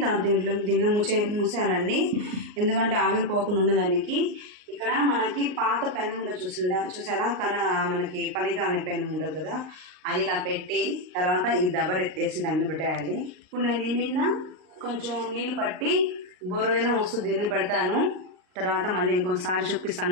దీన్ని మూసేయాలండి, ఎందుకంటే ఆవిరిపోకుండా ఉండదానికి. ఇక్కడ మనకి పాత పెనం ఉండదు, చూసారా, మనకి పనిగా అనే పెనం ఉండదు కదా, అది ఇలా పెట్టి తర్వాత ఈ దబర్ ఎత్తేసి దాన్ని పెట్టేయాలి. ఇప్పుడు నేను ఈ మీద కొంచెం నీళ్ళు పట్టి బొరుదైనా వస్తుంది దీన్ని పెడతాను, తర్వాత మళ్ళీ ఇంకొకసారి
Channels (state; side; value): late; left; 39 ms